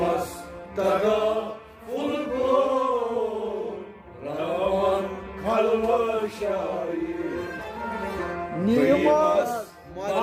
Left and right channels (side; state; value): both; identical; correlation 1.00